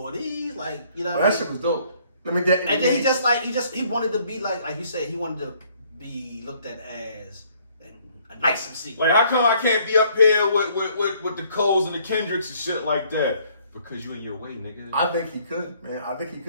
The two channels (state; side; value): inverted; both; correlation -0.63